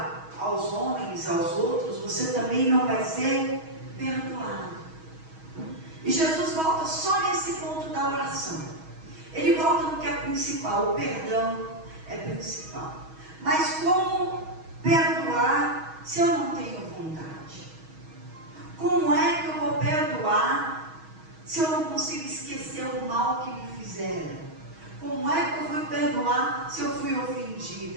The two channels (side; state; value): left; late; 6.3 ms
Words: aos homens, aos outros, você também não vai ser perdoado. E Jesus volta só nesse ponto da oração. Ele volta no que é principal. O perdão é principal. Mas como perdoar se eu não tenho vontade? Como é que eu vou perdoar se eu não consigo esquecer o mal que me fizeram? Como é que eu vou perdoar se eu fui